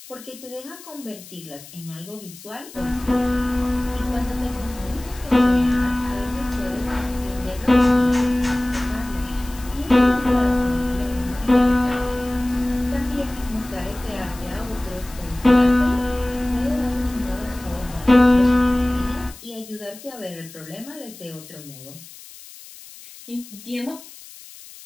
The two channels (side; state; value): left; noise; hiss, 18 dB below the sound